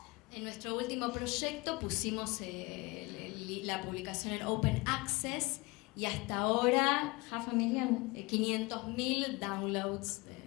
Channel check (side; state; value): right; quieter; 24.6 dB